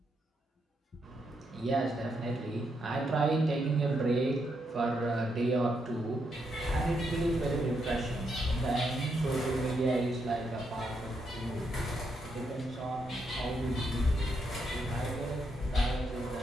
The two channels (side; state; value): both; normal; correlation 0.79